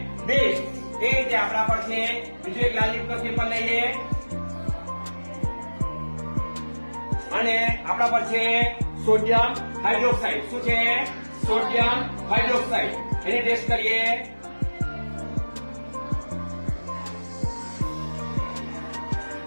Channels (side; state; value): both; inverted; correlation -1.00